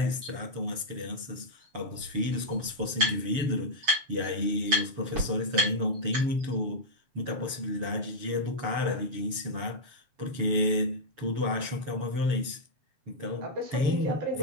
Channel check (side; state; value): left; late; 7.0 ms